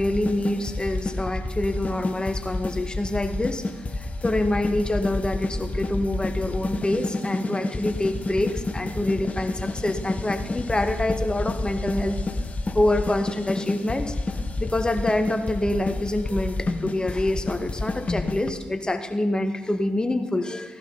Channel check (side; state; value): both; normal; correlation 0.93